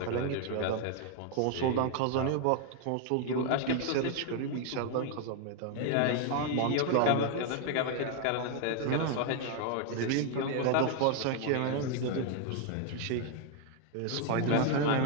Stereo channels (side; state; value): both; different; correlation 0.01